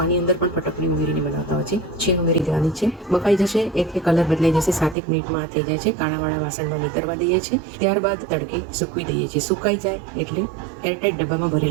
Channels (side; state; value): left; drops out; at 5.0 s